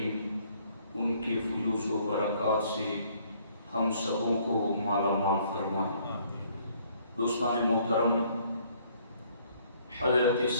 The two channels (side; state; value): both; inverted; correlation -0.63